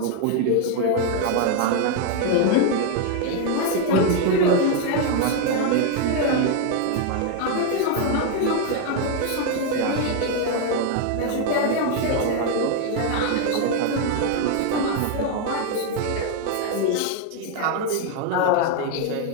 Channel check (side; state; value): both; different; correlation 0.01